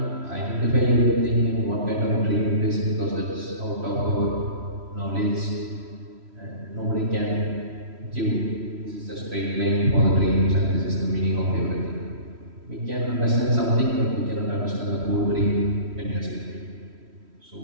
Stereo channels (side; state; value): left; late; 3.1 ms